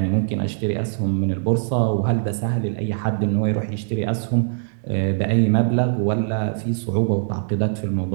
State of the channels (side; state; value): left; silent; digital silence